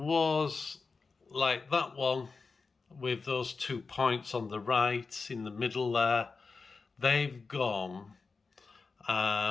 like that one with those 2 points on the right in the middle there. They've gone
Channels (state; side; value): quieter; right; 4.5 dB